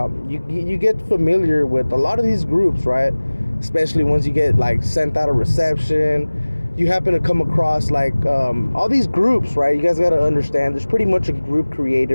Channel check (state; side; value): inverted; both; correlation -1.00